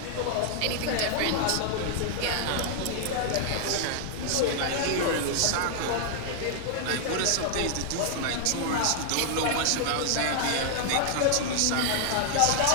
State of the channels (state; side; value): different; both; correlation 0.00